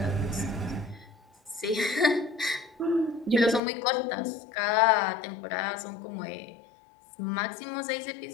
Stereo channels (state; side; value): drops out; right; at 3.6 s